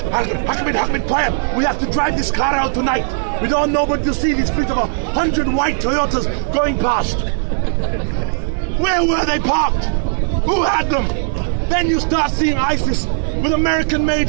Ahmed, quiet, we have to drive this car out tonight. We don't know but to see this fleet of 100 white Toyotas going past." Where were they parked? Who had them? Then you start seeing ISIS with American-made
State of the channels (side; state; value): left; silent; 67 dB below the other